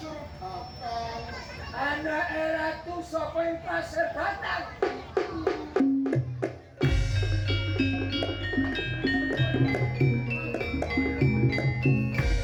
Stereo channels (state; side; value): identical; both; correlation 1.00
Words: batang. Anak ratu sapa ing pasir batang?